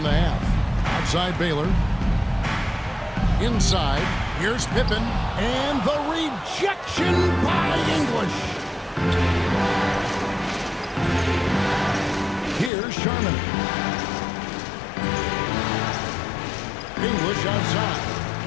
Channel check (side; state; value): right; drops out; at 12.7 s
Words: the half. Outside Baylor. Inside, here's Pippen, and the rejection by English. Here's Sharman. English outside.